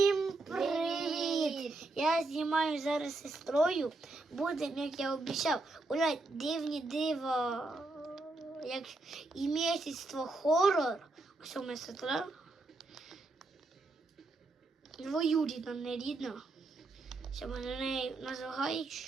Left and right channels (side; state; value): left; quieter; 3.1 dB